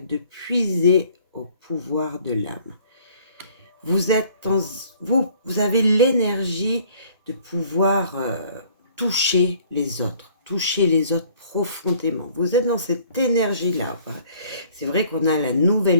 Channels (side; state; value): both; inverted; correlation -0.57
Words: puiser au pouvoir de l'âme. Vous avez l'énergie de pouvoir toucher les autres profondément. Vous êtes dans cette énergie-là. C'est vrai qu'on a la